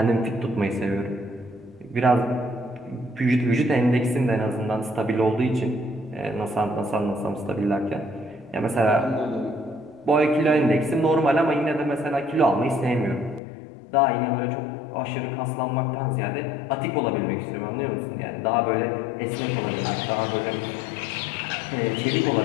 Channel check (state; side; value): drops out; right; at 13.4 s